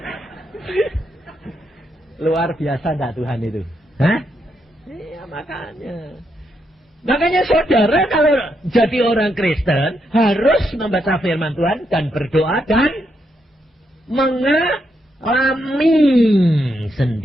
Luar biasa enggak Tuhan itu? Hah? Iya makanya saudara kalau jadi orang Kristen harus membaca firman Tuhan dan berdoa dan mengalami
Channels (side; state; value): both; normal; correlation 0.80